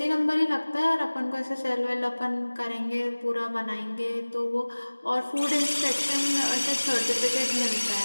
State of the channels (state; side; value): inverted; both; correlation -1.00